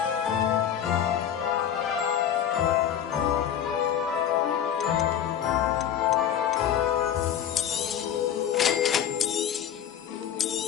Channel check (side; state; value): right; quieter; 9.6 dB